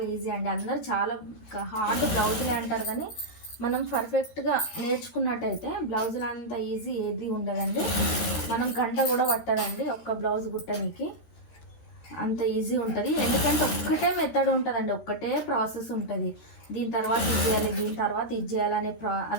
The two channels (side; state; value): right; late; 13 ms